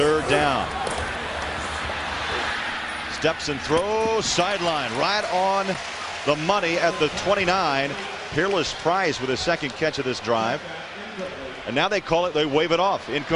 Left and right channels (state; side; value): identical; both; correlation 1.00